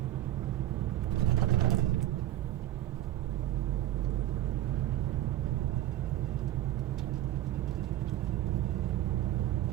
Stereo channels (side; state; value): left; quieter; 13.5 dB